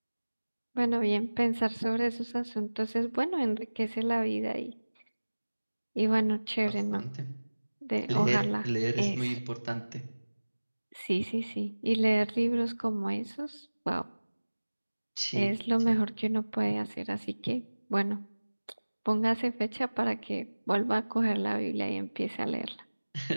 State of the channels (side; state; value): both; inverted; correlation -1.00